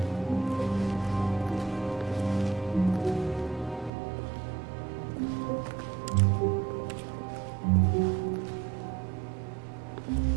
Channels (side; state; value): left; drops out; at 3.9 s